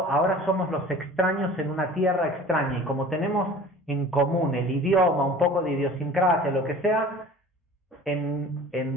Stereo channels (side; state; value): both; normal; correlation 0.43